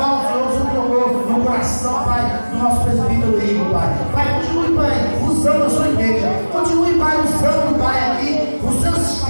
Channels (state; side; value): inverted; both; correlation -1.00